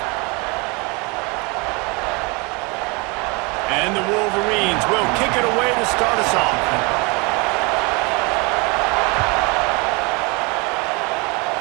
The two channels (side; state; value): left; quieter; 29.0 dB